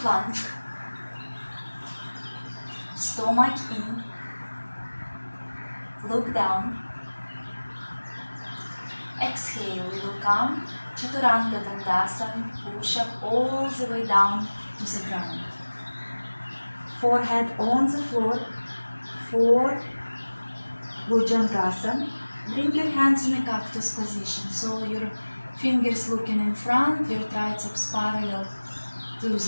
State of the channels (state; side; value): inverted; both; correlation -1.00